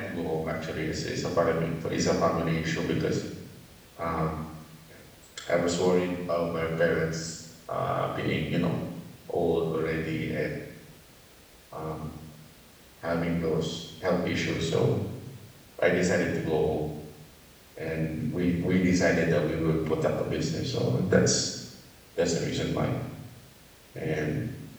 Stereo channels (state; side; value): identical; both; correlation 1.00